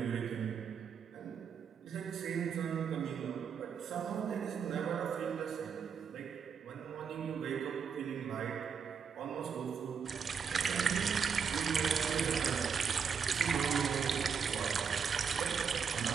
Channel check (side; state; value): left; quieter; 6.5 dB